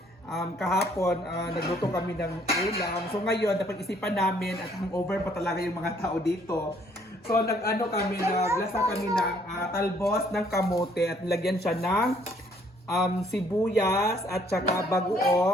kahapon nagluto kami ng ulam. So, ngayon napag-isipan namin at hangover pa talaga yung mga tao dito. So, naglasa kami ng talbos ng kamote at nilagyan siya ng sibuyas at saka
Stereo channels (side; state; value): both; normal; correlation 0.64